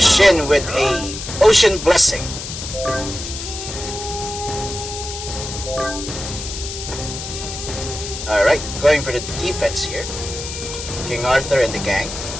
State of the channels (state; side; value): noise; left; hiss, 8 dB below the sound